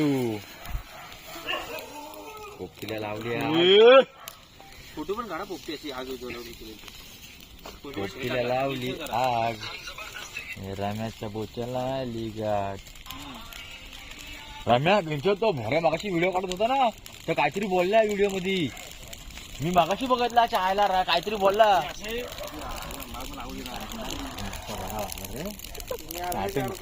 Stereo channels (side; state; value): both; identical; correlation 1.00